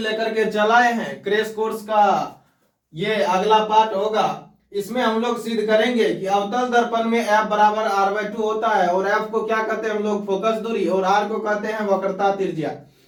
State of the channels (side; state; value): both; identical; correlation 1.00